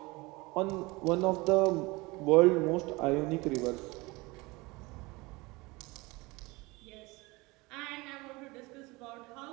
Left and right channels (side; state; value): left; quieter; 23.5 dB